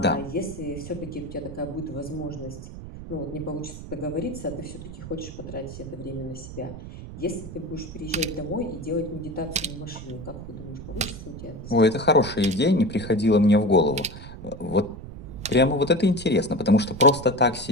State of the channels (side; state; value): right; noise; rumble, 12 dB below the sound